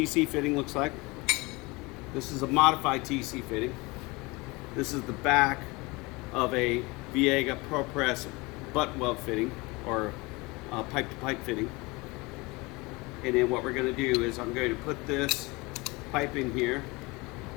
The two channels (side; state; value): right; quieter; 24.5 dB